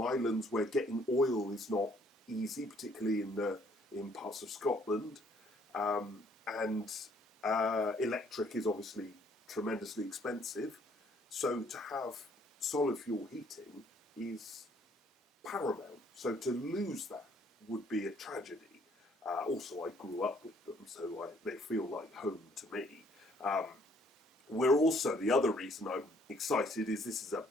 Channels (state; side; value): normal; both; correlation 0.63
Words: islands where getting oil is not easy, particularly in parts of Scotland, and electric is obviously tremendously expensive. So to have solid fuel heating is paramount. So to lose that would be a tragedy. Also, I grew up with them, so they feel like home to me. We're also, the other reason I'm excited is this is a